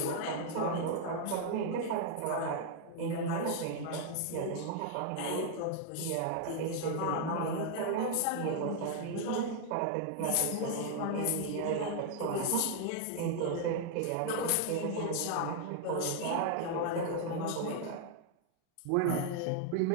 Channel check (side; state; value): both; different; correlation 0.00